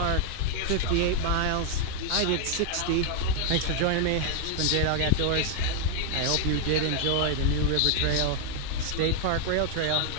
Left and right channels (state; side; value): different; both; correlation 0.00